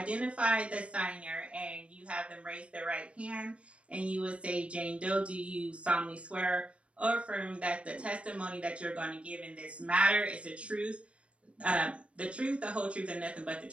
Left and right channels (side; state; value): left; late; 0.061 ms